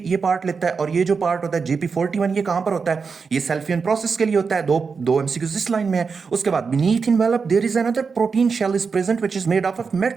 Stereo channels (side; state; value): left; quieter; 5.2 dB